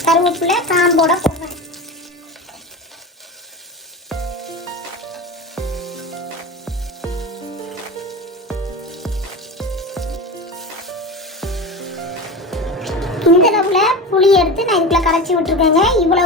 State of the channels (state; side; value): normal; both; correlation 0.27